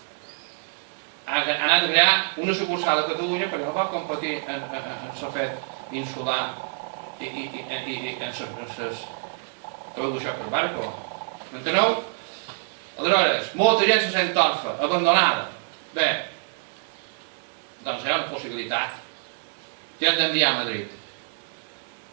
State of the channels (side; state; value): left; silent; 61 dB below the other